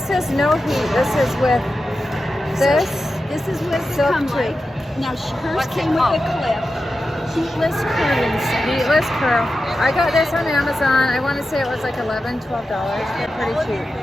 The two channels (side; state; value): both; normal; correlation 0.91